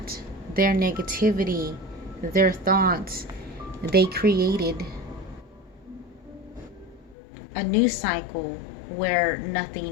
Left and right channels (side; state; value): right; drops out; at 7.2 s